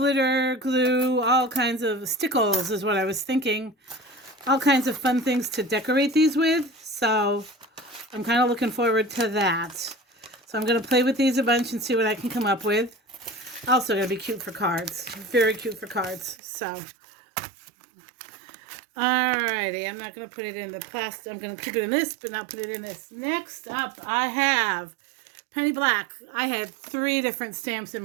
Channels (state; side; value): drops out; left; at 16.4 s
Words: glue, all kinds of stickles is what I was thinking. All kinds of fun things to decorate these with. So I'm kind of looking forward to that. So I'm going to play with these a bunch and see what I can come up with. Also going to be cute for cards. Very cute for cards. So, alrighty. I'm not going to put it in the plastic. I'm going to keep it in this, but not put it in this. Next up, I have Penny Black. I had 3 different stamps in